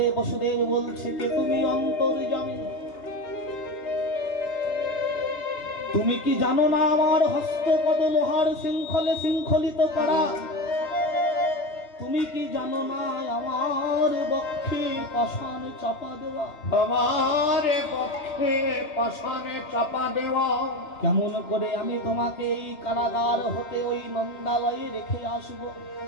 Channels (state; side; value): late; right; 2.9 ms